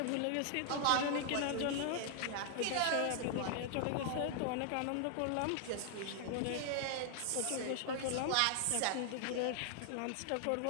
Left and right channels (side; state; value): both; different; correlation 0.00